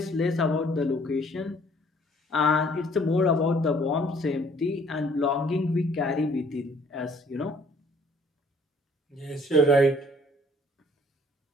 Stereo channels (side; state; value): both; normal; correlation 0.59